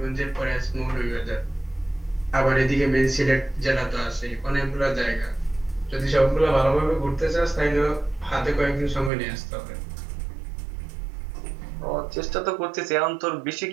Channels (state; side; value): drops out; left; at 9.1 s